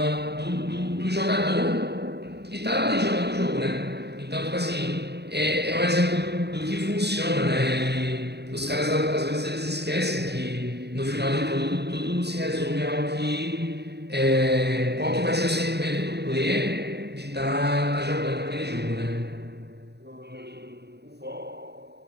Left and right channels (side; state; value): left; late; 0.48 ms